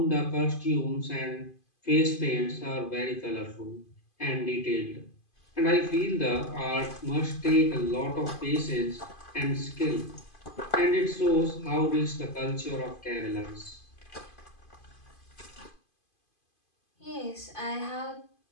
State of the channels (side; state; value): right; late; 2.5 ms